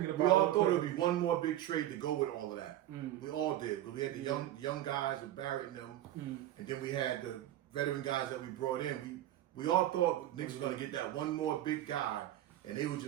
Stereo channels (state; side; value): quieter; left; 13.3 dB